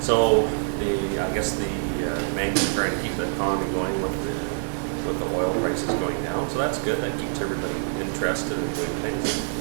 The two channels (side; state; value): left; silent; digital silence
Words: So I guess the banks are trying to keep the economy going with the oil prices going down. So that's good. That keeps everybody interested in doing things.